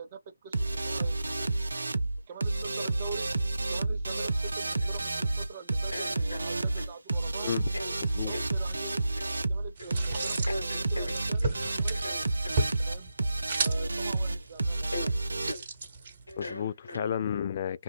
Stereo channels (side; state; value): both; inverted; correlation -0.88